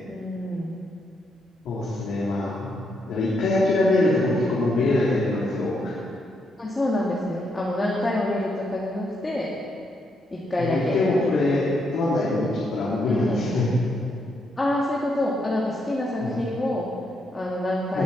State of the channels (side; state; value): both; normal; correlation 0.78